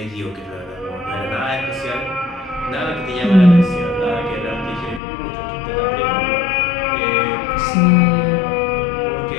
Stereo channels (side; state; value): right; drops out; at 5.0 s